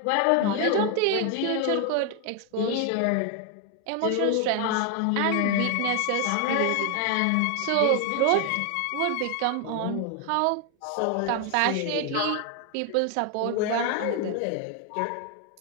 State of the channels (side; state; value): both; different; correlation 0.00